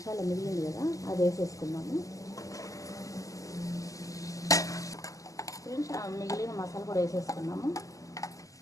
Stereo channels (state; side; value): late; right; 0.16 ms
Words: మిగిలింది కదా, అది వేసేసుకుందాము. ఫ్రెండ్స్ మిగిలిన మసాలా కూడా వేసేసుకున్నాము.